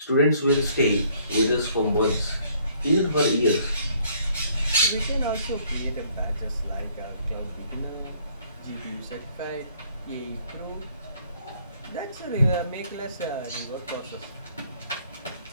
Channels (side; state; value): both; inverted; correlation -0.62